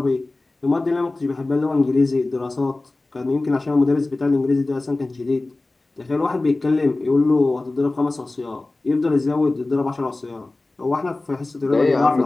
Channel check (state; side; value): quieter; right; 3.1 dB